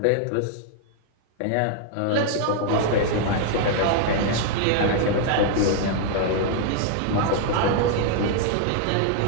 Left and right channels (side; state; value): both; different; correlation 0.00